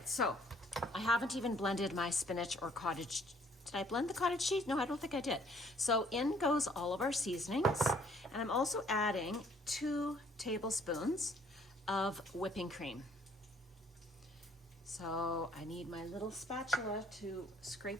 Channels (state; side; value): normal; both; correlation 0.61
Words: so I haven't even blended my spinach or cottage. Did I blend the cottage cheese? No, I don't think I did. So in goes all of our seasonings, and I'm also adding 2 tablespoons of whipping cream. So I need my little spatula to